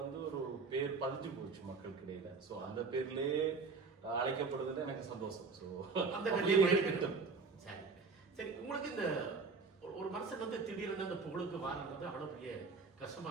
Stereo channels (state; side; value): quieter; left; 4.6 dB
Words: ஒரு பேர் பதிஞ்சு போச்சு மக்களுக்கு இடையில. ஸோ அந்த பேர்லயே அழைக்கப்படுறதுல எனக்கு சந்தோஷம். ஸோ அந்த பேர்லயே சரி சரி. உங்களுக்கு இந்த ஒரு மனுஷன் திடீர்னு அந்த புகழுக்கு வாரன்றது அவ்வளவு பெரிய